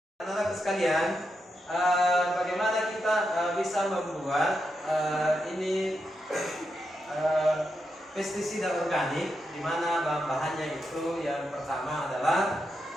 anak-anak sekalian, bagaimana kita bisa membuat pestisida organik, di mana bahan-bahannya itu yang pertama adalah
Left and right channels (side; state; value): both; normal; correlation 0.85